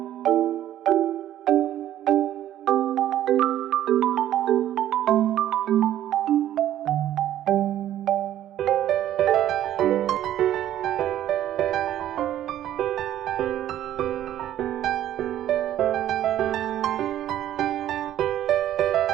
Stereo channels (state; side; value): quieter; left; 12.2 dB